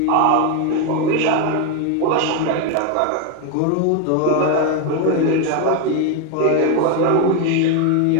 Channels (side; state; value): both; different; correlation 0.01